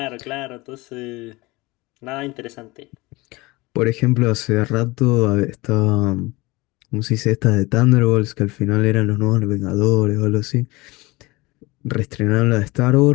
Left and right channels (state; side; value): quieter; right; 22.5 dB